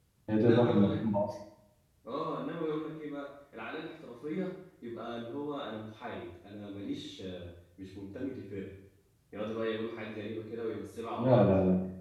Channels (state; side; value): identical; both; correlation 1.00